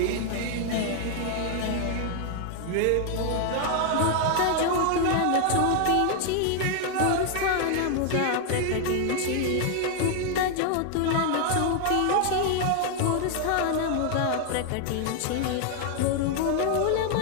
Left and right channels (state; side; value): different; both; correlation 0.00